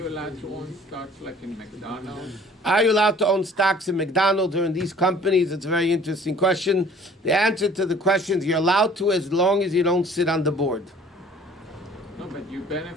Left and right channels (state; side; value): normal; both; correlation 0.52